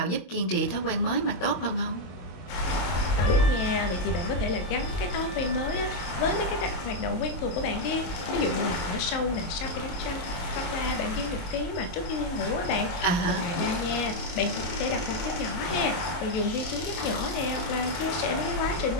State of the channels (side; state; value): right; late; 23 ms